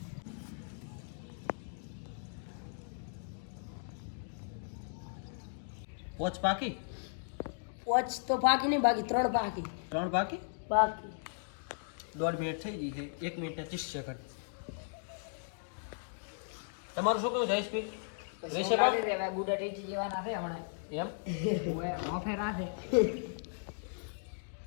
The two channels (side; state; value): right; silent; digital silence